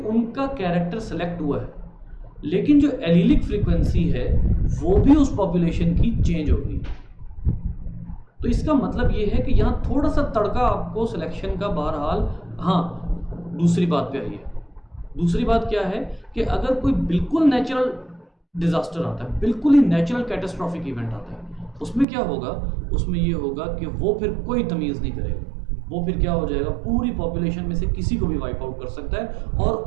कैरेक्टर सेलेक्ट हुआ है, लेकिन जो एलीलिक फ्रीक्वेंसी है वो भी उस पॉपुलेशन की चेंज हो गई। तो इसका मतलब ये है कि यहाँ थोड़ा सा तड़का आपको सिलेक्शन का बहरहाल। हाँ, दूसरी बात पे आइए। दूसरी बात क्या है कि अगर कोई बिल्कुल नेचुरल डिजास्टर आता है, बिल्कुल ही नेचुरल कैटास्ट्रॉफिक इवेंट आता है, उसमें क्या होगा, उसमें ये होगा कि वो फिर कोई तमीज़ नहीं करेगा, वो फिर क्या हो जाएगा, पूरी पॉपुलेशन में से किसी को भी वाइप आउट कर सकता है, और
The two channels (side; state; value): left; drops out; at 22.1 s